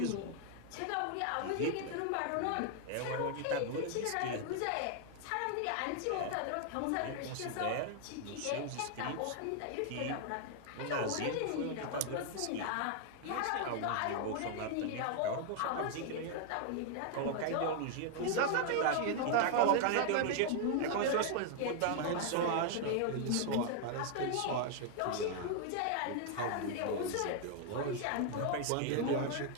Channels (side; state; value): both; different; correlation 0.00